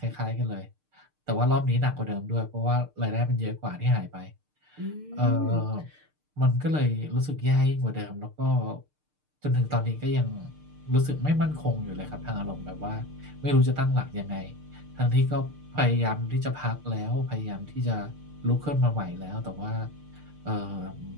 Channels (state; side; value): late; left; 6.6 ms